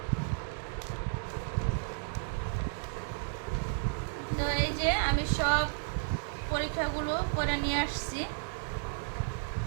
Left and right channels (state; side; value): silent; left; digital silence